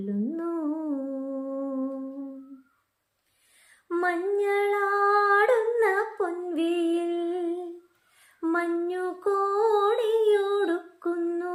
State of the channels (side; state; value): both; identical; correlation 1.00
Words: മഞ്ഞളാടുന്ന പൊൻവെയിൽ മഞ്ഞു